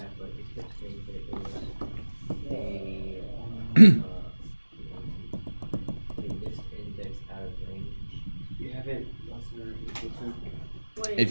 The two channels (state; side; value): inverted; both; correlation -1.00